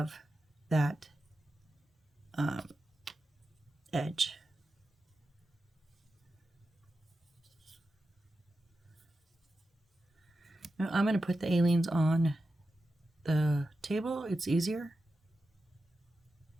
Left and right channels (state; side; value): normal; both; correlation 0.91